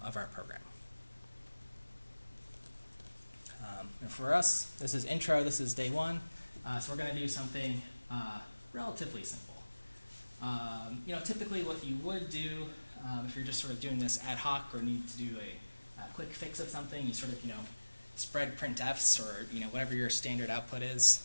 our program. And for us, this is intro, this is day 1. So we're going to do something relatively simple. Typically what you would do if you're just sort of doing this ad hoc or need to do a quick fix of something, you sort of, spread printfs or, whatever your standard output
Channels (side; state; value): both; inverted; correlation -1.00